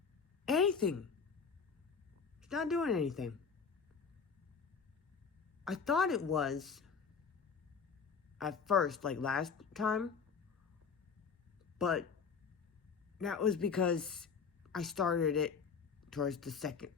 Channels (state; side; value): quieter; right; 5.8 dB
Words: anything. It's not doing anything. I thought it was at first, like last time, but that was because I started it towards the